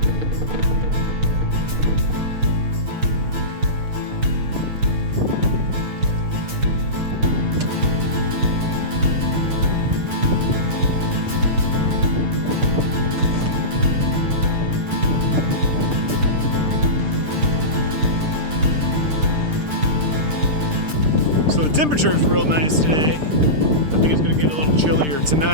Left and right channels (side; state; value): left; late; 6.6 ms